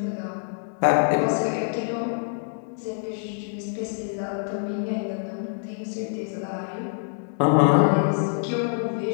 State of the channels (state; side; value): silent; right; digital silence